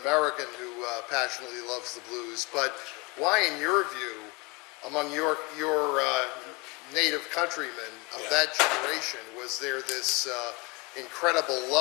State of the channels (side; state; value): right; quieter; 26.6 dB